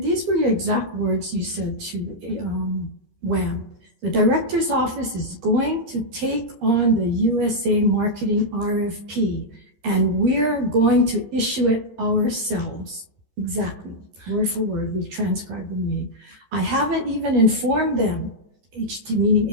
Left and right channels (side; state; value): left; late; 13 ms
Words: were your exact words you said to WAM. The director's office is going to take on the USA marketing RFP, and we're going to issue it ourselves. Exactly, word for word, we've transcribed the meeting. I haven't even informed them, meaning